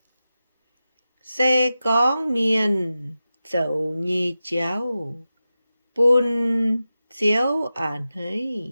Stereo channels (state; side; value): inverted; both; correlation -0.93